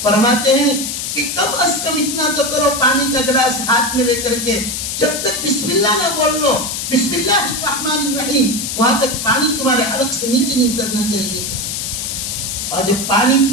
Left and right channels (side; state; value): left; noise; hiss, 4 dB below the sound